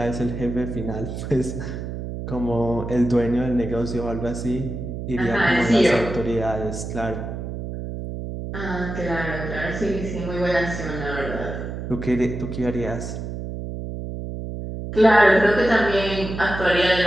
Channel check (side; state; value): right; noise; hum, 6 dB below the sound